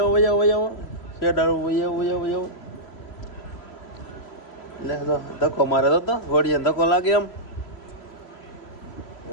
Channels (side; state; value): right; late; 3.0 ms